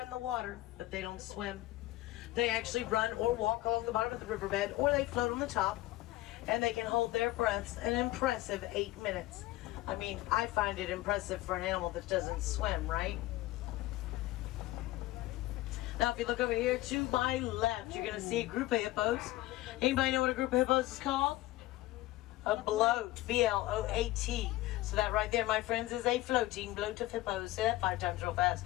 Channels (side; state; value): right; quieter; 17.3 dB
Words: the water, but they don't swim. They actually run or walk along the bottom of the riverbed, or they float on the top, and they can hold their breaths an impressive 8 minutes. I mean, I find it impressive for an animal that doesn't swim, right? Now, if you look over here to my left, you're going to see a group of hippos. Anybody know what a group of hippos is called? A bloat, B-L-O-A-T. So that right there, my friends, is a floating bloat of hippos. Say that 5 times real fast.